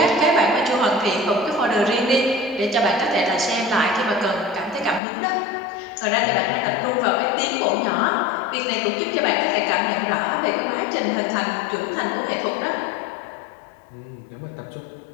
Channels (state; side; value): drops out; right; at 5.0 s